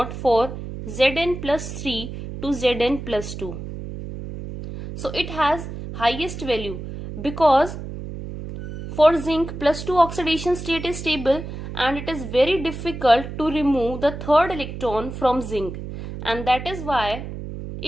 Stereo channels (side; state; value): right; noise; hum, 9 dB below the sound